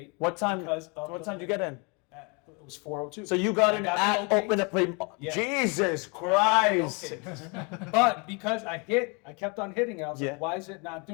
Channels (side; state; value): right; quieter; 32.0 dB